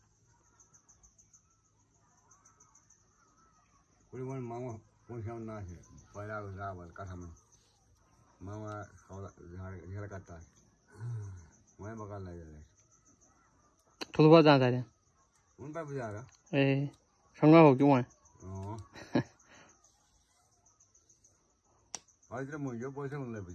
कोई वन मामा पहुंचा ना है पहला रावल कथा में मामा घर करता है मैं बकार लगे थोड़ा बहुत जा रहे हैं उन पर भी जा रहा ए संगा हो क्यों है आज मुझे पैसे मिल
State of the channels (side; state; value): both; identical; correlation 1.00